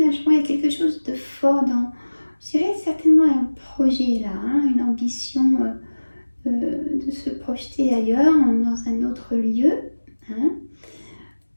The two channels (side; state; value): both; inverted; correlation -1.00